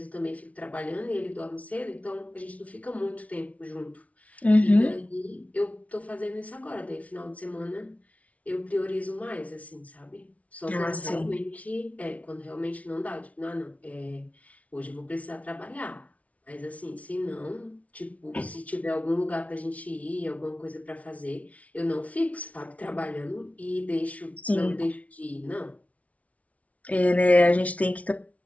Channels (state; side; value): late; right; 0.067 ms